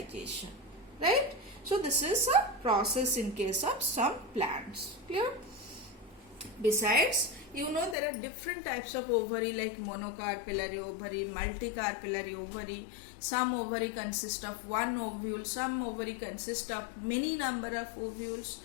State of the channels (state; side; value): drops out; right; at 8.0 s